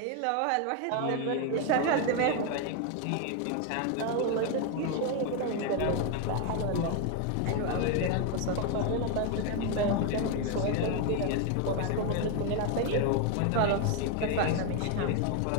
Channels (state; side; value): different; both; correlation 0.01